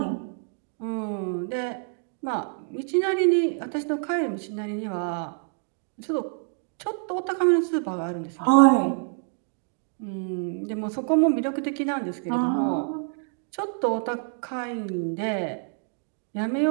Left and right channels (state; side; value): silent; left; 60 dB below the other